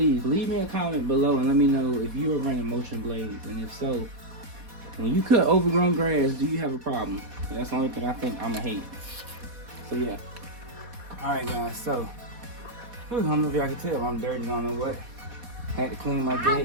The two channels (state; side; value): late; left; 4.2 ms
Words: leave me a comment below and let me know if you are running mulching blades, and if so, when you cut overgrown grass, do you have a problem? That's the only thing I think I'ma hate. So yeah. All right, guys. So I don't know if y'all can tell, I'm dirty. I don't know what. Had to clean my